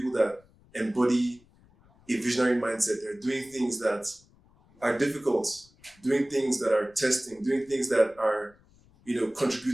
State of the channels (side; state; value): left; noise; rumble, 30 dB below the sound